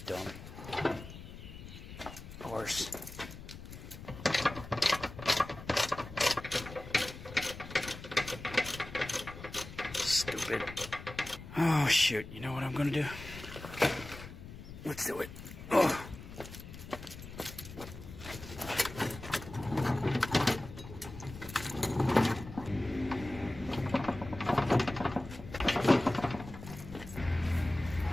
dumb horse. Stupid. Oh shoot, you know what I'm gonna do? Let's do it. Oh.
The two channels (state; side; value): noise; left; rumble, 13 dB below the sound